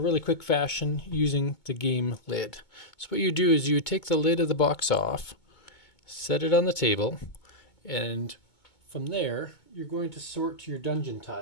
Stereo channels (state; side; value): late; right; 2.2 ms